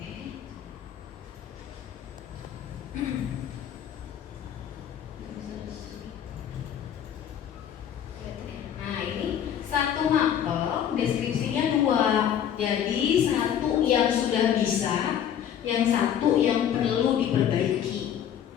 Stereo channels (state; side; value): quieter; right; 9.4 dB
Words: Nah, ini satu mapel deskripsinya 2. Jadi satu yang sudah bisa, yang satu yang perlu diperbaiki.